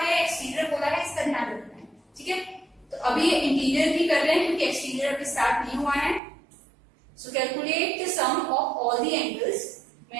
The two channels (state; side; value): drops out; left; at 6.2 s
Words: है, एक्सटीरियर बोला है, इसका ध्यान रखना है। ठीक है, तो अभी इंटीरियर भी कर रहे हैं क्योंकि एक्सटीरियर अभी स्टार्ट नहीं हुआ है। So calculate the sum of all the angles. मैं